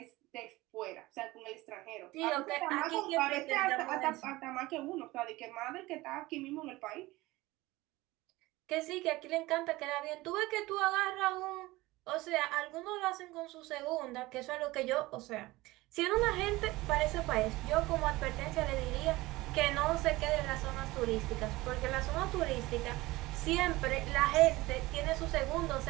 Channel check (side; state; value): left; quieter; 19.7 dB